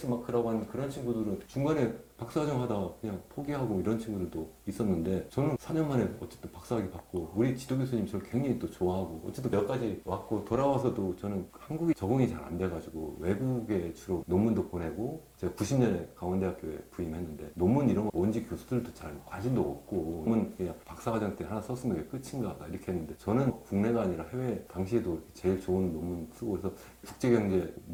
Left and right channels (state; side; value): identical; both; correlation 1.00